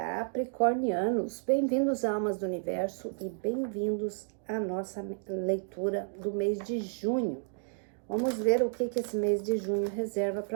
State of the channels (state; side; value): silent; left; digital silence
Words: bem-vindos a Almas do Universo e bem-vindos à nossa leitura do mês de junho. Vamos ver o que esse mês de junho reserva